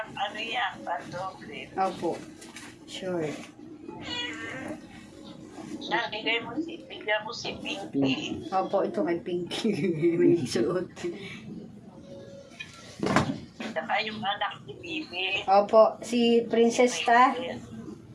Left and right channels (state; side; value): identical; both; correlation 1.00